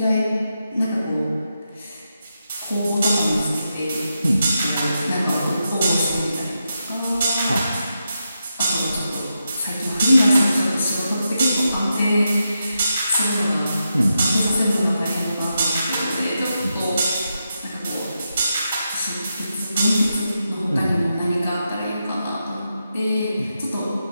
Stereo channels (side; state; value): both; inverted; correlation -0.86